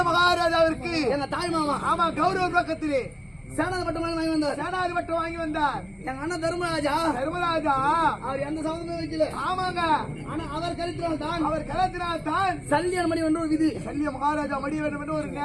மகாராஜாவிற்கு எங்க தாய் மாமா. ஆமா, கௌரவ பக்கத்திலே சேனாதி பட்டம் வாங்கி வந்தார். எங்க அண்ணன் தர்மராஜா அவர் எந்த சம்பந்தமும் வைக்கல. ஆமாங்க. ஆனா அவர் கருத்தினால் தான் சல்லிய மணி என்று ஒரு விதி. சல்லிய மகாராஜா மணி வேண்டும் என்று ஒரு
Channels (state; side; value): identical; both; correlation 1.00